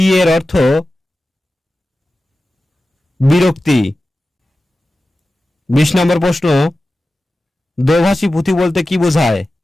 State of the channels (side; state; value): both; normal; correlation 0.94